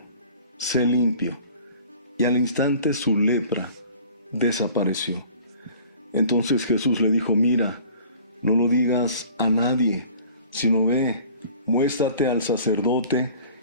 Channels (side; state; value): both; inverted; correlation -0.49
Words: sé limpio. Y al instante su lepra desapareció. Entonces Jesús le dijo: Mira, no lo digas a nadie, sino ve, muéstrate al sacerdote